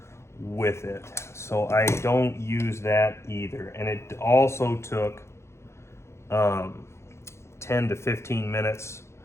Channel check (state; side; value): late; right; 0.13 ms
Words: with it. So I don't use that either. And it also took 10 to 15 minutes